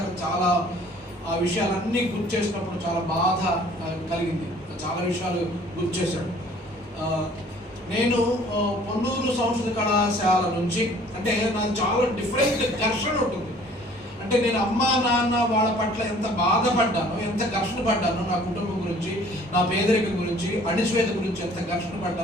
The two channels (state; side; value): normal; both; correlation 0.54